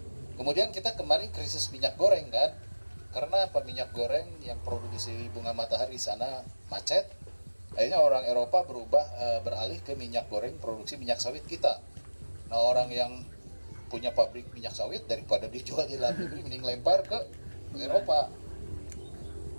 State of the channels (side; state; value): both; inverted; correlation -1.00